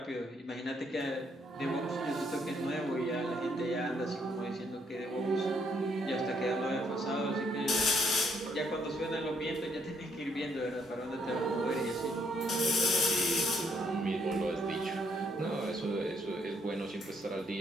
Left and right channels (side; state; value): both; normal; correlation 0.71